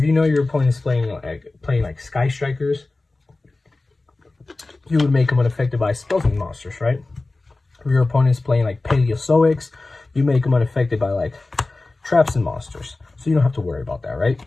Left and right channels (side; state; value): right; quieter; 3.2 dB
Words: you know your opponent is playing like Sky Strikers, you would make them unaffected by spells and monsters, right? If your opponent is playing like Paleozoics, you make them unaffected by like traps and monsters. So you don't have to worry about that, right?